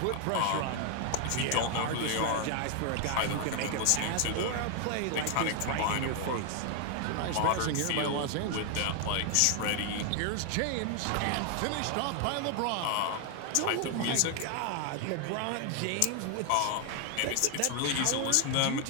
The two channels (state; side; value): different; both; correlation 0.00